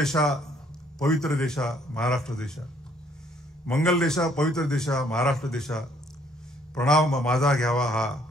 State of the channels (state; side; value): normal; both; correlation 0.64